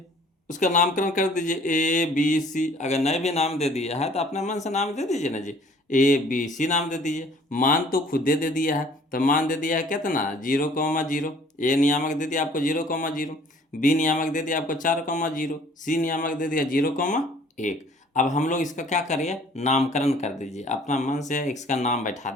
उसका नामकरण कर दीजिए ए बी सी, अगर नए भी नाम दे दिया है तो अपने मन से नाम दे दीजिए ना जी, ए बी सी नाम दे दीजिए। मान तो खुद दे दिया है, तो मान दे दिया है कितना 0,0, ए नियामक दे दिया आपको 0,0, बी नियामक दे दिया आपको 4,0, सी नियामक दे दिया 0,1। अब हम लोग इसका क्या करिए, नामकरण कर दीजिए, अपना मन से इसका नाम बैठा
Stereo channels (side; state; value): both; normal; correlation 0.55